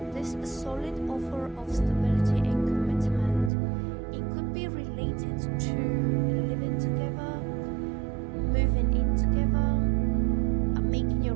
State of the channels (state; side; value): drops out; left; at 3.5 s